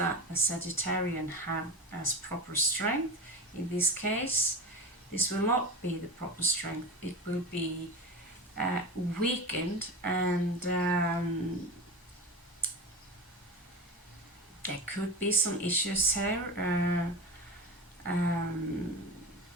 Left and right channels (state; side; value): normal; both; correlation 0.26